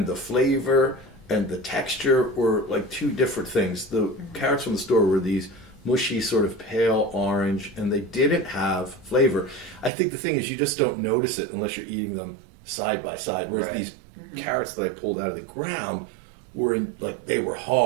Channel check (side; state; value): left; drops out; at 9.9 s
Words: the flavor and the texture were like 2 different things. The carrots from the store were these mushy, sort of pale orange, and they didn't have flavor. I think the thing is you just don't notice it unless you're eating them side by side, whereas these carrots that I pulled out of the ground were they were